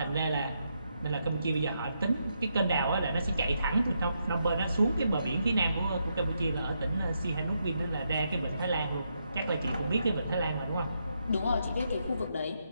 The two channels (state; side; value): inverted; both; correlation -0.80